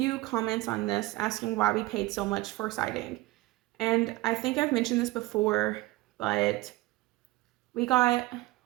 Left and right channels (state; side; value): quieter; left; 19.6 dB